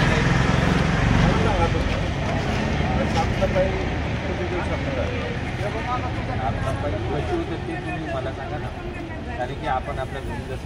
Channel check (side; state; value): both; identical; correlation 1.00